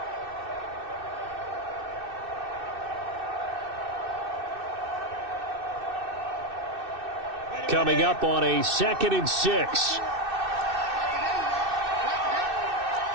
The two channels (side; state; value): left; late; 2.6 ms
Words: Coming up on a 2nd and 6.